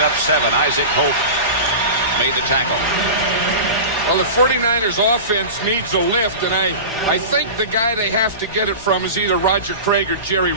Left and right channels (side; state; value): both; inverted; correlation -0.31